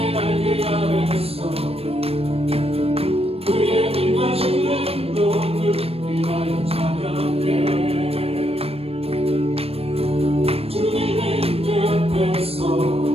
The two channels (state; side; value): late; left; 0.28 ms